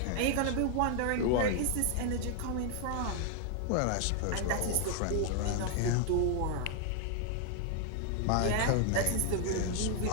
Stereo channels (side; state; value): both; different; correlation 0.00